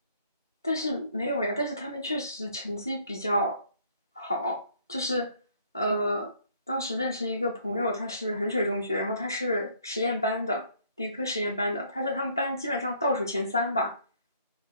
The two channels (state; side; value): inverted; both; correlation -0.63